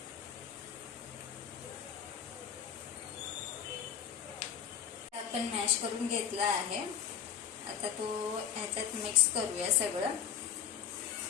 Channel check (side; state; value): right; quieter; 8.8 dB